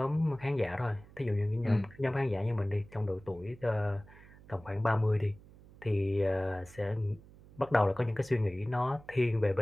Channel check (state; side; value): noise; right; hum, 22 dB below the sound